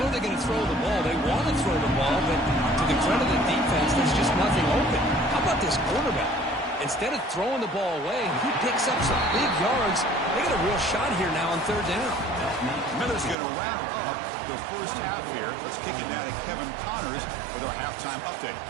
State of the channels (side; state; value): left; drops out; at 13.4 s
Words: they're going to throw the ball. They want to throw the ball, but to the credit of the defense, there's just nothing open. How about this quarterback? Instead of throwing the ball away, he picks up some big yards. They got a real shot here now on third down. Miller's going to wrap up the first half here. Let's kick it down to Kevin Connors with our halftime update.